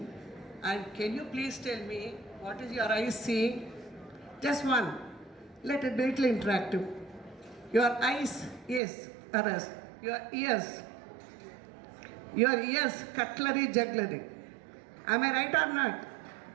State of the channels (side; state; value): left; drops out; at 8.8 s